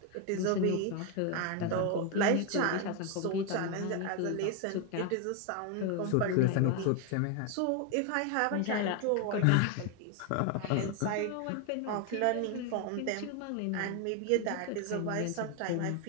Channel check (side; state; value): both; different; correlation 0.01